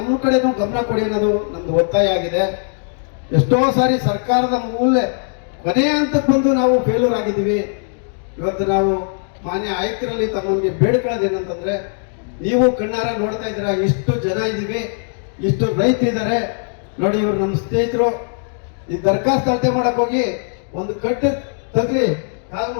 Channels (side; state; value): right; silent; 63 dB below the other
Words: ಕಡೆನೂ ಗಮನ ಕೊಡಿ ಅನ್ನೋದು ನಮ್ದು ಒತ್ತಾಯ ಆಗಿದೆ. ಎಷ್ಟೋ ಸಾರಿ ಸರ್ಕಾರದ ಕೊನೆಯ ಹಂತಕ್ಕೆ ಬಂದು ನಾವು ಫೇಲ್ಯೂರ್ ಆಗಿದ್ದೀವಿ. ಇವತ್ತು ನಾವು ಮಾನ್ಯ ಆಯುಕ್ತರಲ್ಲಿ ತಮಗೆ ಬೇಡ್ಕೊಳ್ಳೋದೇನಂತಂದ್ರೆ, ನೀವು ಕಣ್ಣಾರ ನೋಡ್ತಾ ಇದ್ದೀರಾ, ಇಷ್ಟು ಜನ ಇದ್ದೀವಿ, ಇಷ್ಟು ರೈತರಿದ್ದಾರೆ ನೋಡಿ. ಇವರು ನಮ್ಮ ಸ್ನೇಹಿತರು ಈ ದರ್ಖಾಸ್ತು ಅಳತೆ ಮಾಡಕ್ ಹೋಗಿ ಒಂದು ಕಟ್ಟು ತಗ್ಲಿ ಕಾಲು